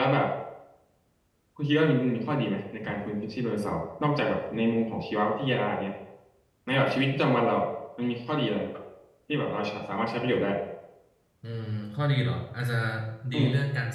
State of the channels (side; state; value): both; identical; correlation 1.00